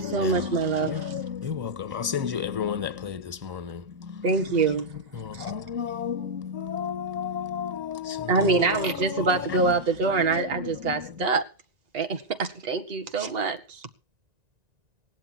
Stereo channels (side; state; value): left; late; 1.9 ms